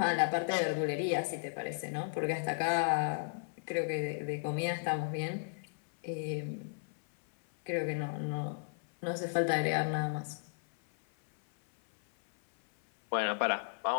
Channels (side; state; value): right; silent; 55 dB below the other